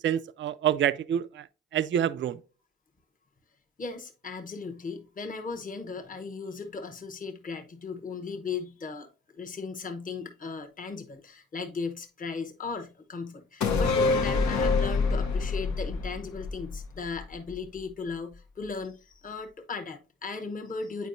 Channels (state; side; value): normal; both; correlation 0.45